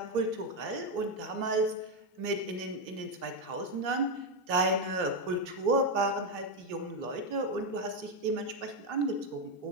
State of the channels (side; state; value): left; late; 3.1 ms